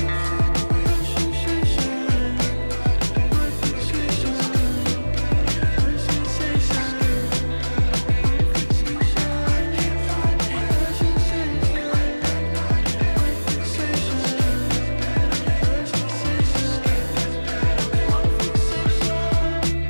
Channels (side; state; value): both; inverted; correlation -1.00